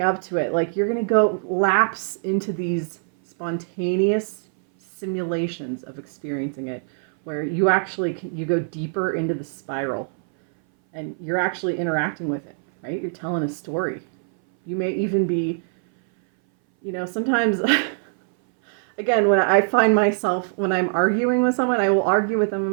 up to it. Like, you're going to go lapse into these spontaneous simulations of experiencing it, where you go deeper into the spiral and you're actually interacting with it, right? You're telling a story. You may even be, sometimes, again, when I find myself, when I'm arguing with someone, I will argue with them in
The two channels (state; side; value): silent; left; 60 dB below the other